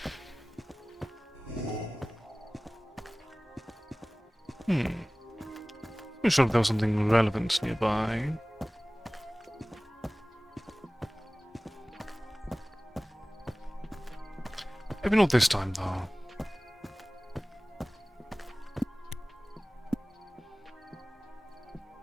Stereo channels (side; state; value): both; normal; correlation 0.98